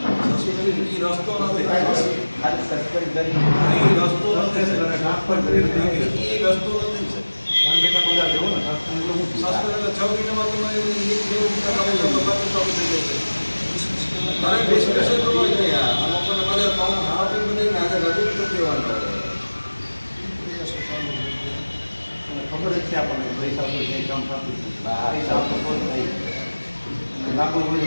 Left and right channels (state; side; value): inverted; both; correlation -1.00